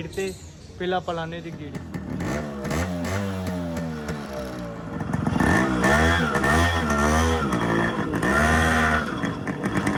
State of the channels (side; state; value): both; identical; correlation 1.00